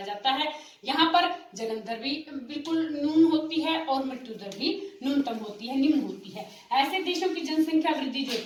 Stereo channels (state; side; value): identical; both; correlation 1.00